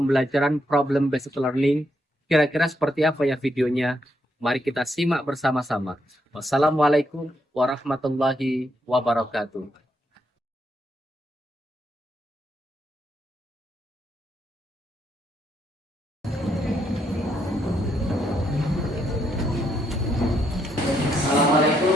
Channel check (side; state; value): both; normal; correlation 0.77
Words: problem based learning. Kira-kira seperti apa ya videonya? Mari kita simak bersama-sama. Wassalamualaikum warahmatullahi wabarakatuh. Assalamualaikum